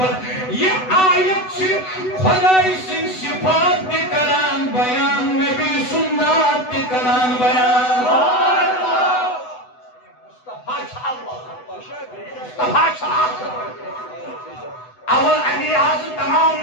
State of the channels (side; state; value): right; late; 8.0 ms